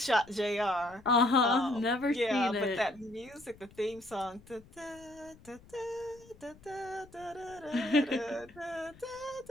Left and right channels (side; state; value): left; noise; rumble, 24 dB below the sound